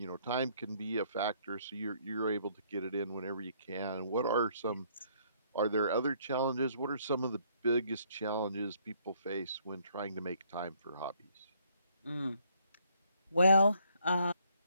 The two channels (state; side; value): inverted; both; correlation -0.66